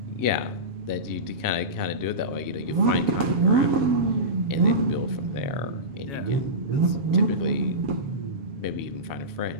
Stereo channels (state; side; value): late; left; 7.4 ms